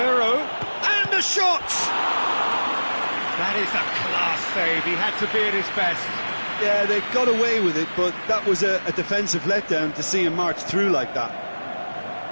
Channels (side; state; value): both; inverted; correlation -1.00